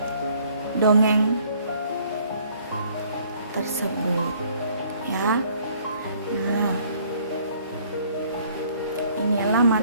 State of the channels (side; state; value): both; inverted; correlation -0.60